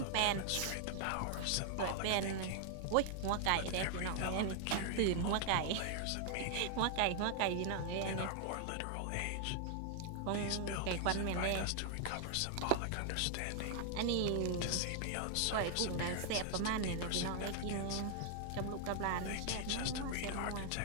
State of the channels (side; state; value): both; different; correlation 0.00